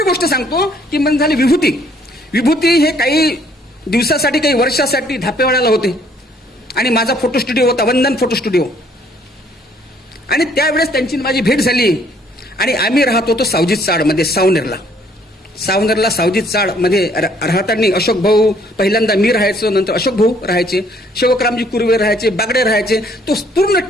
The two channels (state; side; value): normal; both; correlation 0.63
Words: गोष्ट सांगतो की मग झाली विभूती. विभूती हे काही दिवसासाठी काही वर्षासाठी धापेवाड्याला होते आणि माझा फोटो स्टुडिओ होता, वंदन फोटो स्टुडिओ. आणि त्यावेळेस त्यांची माझी भेट झाली. आणि आम्ही राहत होतो सावजी चाडमध्ये, सावनेरला सावजी चाडमध्ये राहताना अशोक भाऊ पहिल्यांदा, मी राहायचो, नंतर अशोक भाऊ राहायचे, शेवकरामजी कुर्वे राहायचे, बागडे राहायचे. तो पूर्ण